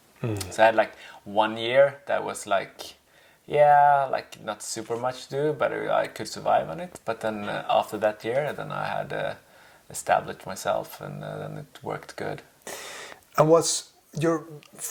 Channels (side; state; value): both; identical; correlation 1.00